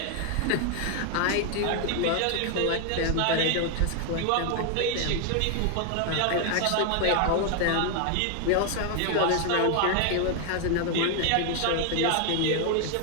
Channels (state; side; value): different; both; correlation 0.00